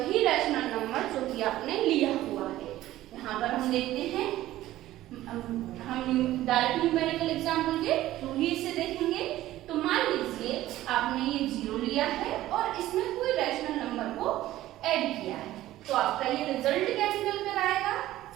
रैशनल नंबर जो कि आपने लिया हुआ है। यहाँ पर हम देखते हैं, हम डायरेक्ट न्यूमेरिकल एग्जाम्पल के थ्रू ही इसे देखेंगे। तो मान लीजिए आपने ये 0 लिया है और इसमें कोई रैशनल नंबर को ऐड किया है, तो आपका ये रिजल्ट क्या निकल कर आएगा।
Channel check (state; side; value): quieter; left; 15.0 dB